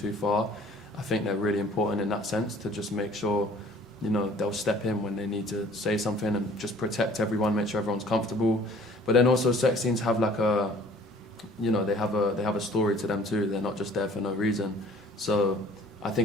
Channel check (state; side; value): normal; both; correlation 0.52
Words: far, I think they're really important in that sense, to just make sure, they'll step in when they need to say something and just protect everyone, make sure everyone's comfortable. But then also sex scenes have like they have a story to them too. They're not just there for no reason. So I